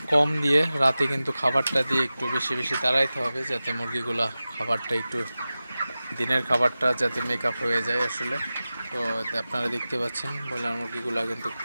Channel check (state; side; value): inverted; both; correlation -0.96